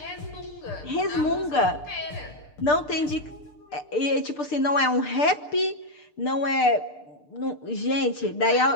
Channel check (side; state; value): right; late; 6.7 ms